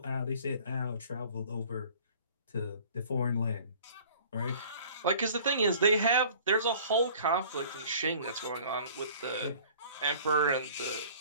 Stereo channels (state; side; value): inverted; both; correlation -0.49